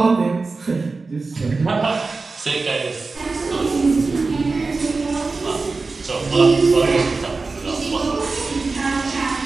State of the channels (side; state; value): left; quieter; 3.9 dB